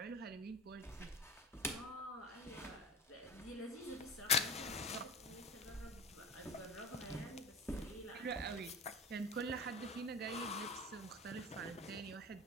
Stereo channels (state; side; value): normal; both; correlation 0.32